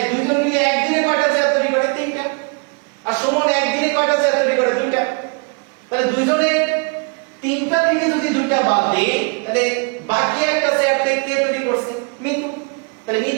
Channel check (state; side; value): quieter; left; 33.8 dB